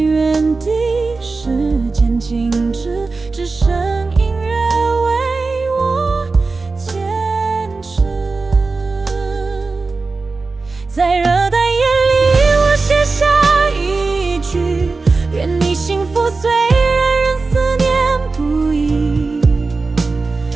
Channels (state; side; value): quieter; left; 3.9 dB